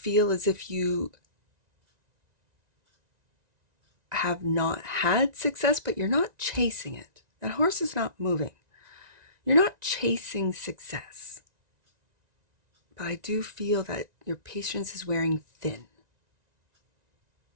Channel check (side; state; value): left; late; 1.9 ms